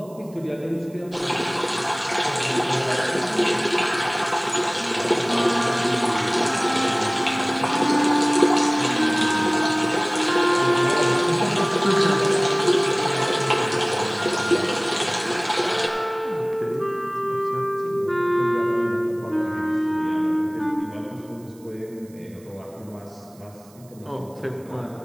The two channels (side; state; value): right; noise; hiss, 27 dB below the sound